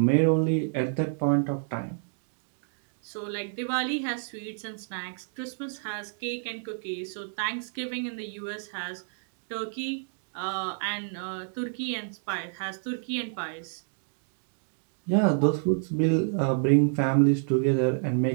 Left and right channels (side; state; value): left; silent; digital silence